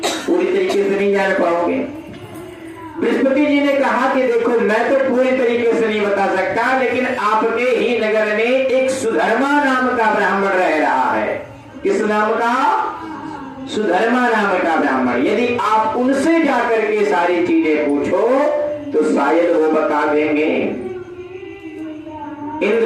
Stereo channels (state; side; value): identical; both; correlation 1.00